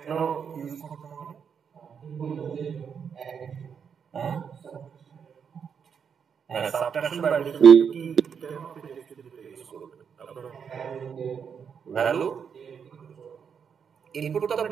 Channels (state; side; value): quieter; left; 7.0 dB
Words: ইউজ করতে হবে? হ্যাঁ, সাবট্রাকশন বা অ্যাডিশন কি কেন আপনি টেক্সট ফিল্ড ইউজ করবেন? আপনার ভ্যালু ইনপুট তো